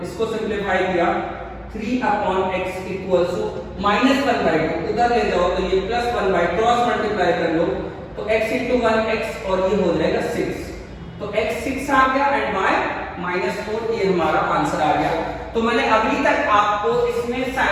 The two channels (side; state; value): both; identical; correlation 1.00